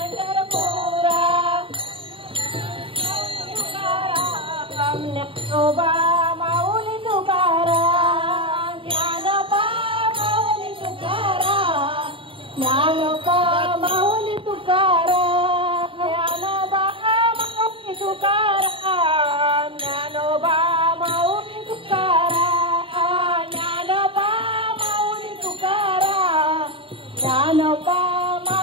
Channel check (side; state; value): left; late; 0.25 ms